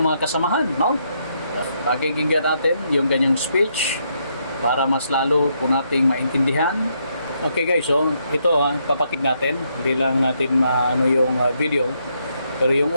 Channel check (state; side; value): inverted; both; correlation -0.76